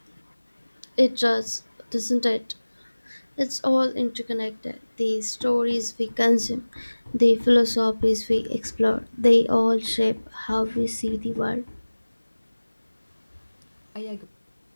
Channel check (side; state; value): both; inverted; correlation -1.00